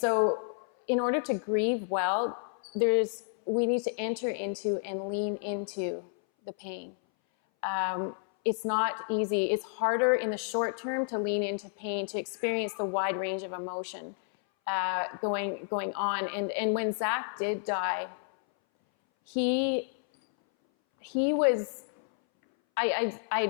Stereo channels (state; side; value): silent; right; 58 dB below the other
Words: in order to grieve well, we need to enter into and lean into the pain. It's not easy. It's harder in the short term to lean into pain, to experience the wide range of emotion going on. And when Zach did die, he was,